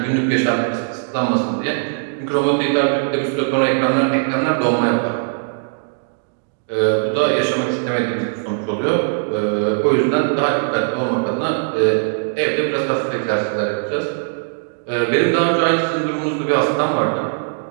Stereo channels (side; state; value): left; silent; digital silence